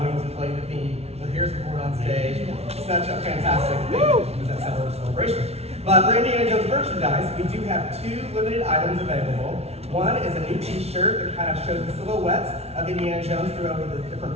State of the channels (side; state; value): left; late; 0.31 ms